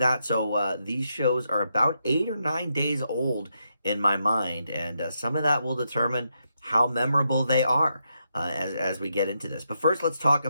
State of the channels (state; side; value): inverted; both; correlation -0.82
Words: so these shows are about 8 or 9 days old in my mind, and some of that will determine how memorable they are. As we get into this. But first, let's talk